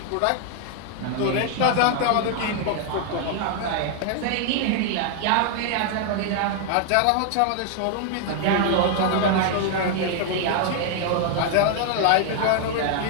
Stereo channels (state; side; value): different; both; correlation 0.00